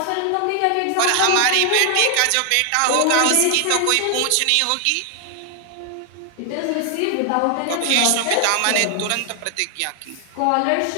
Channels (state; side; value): different; both; correlation 0.00